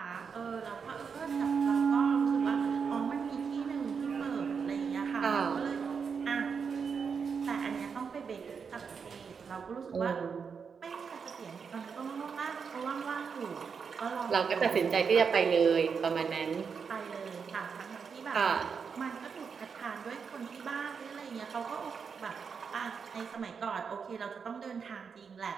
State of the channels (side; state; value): left; quieter; 6.0 dB